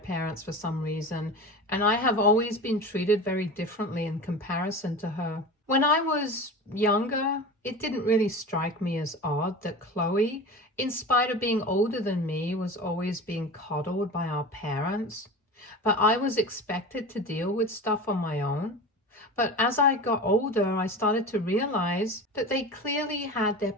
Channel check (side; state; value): both; normal; correlation 0.31